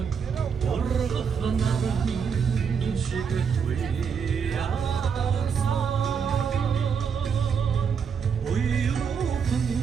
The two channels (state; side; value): quieter; left; 6.5 dB